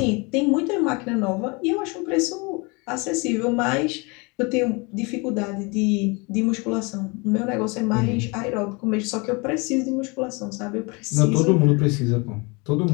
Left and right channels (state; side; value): quieter; right; 28.7 dB